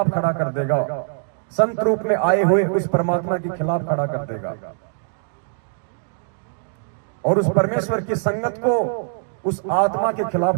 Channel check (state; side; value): silent; left; digital silence